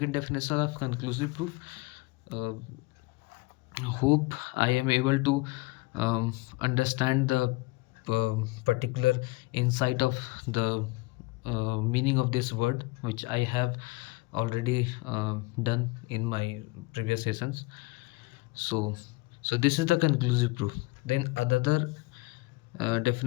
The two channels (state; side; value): quieter; right; 22.6 dB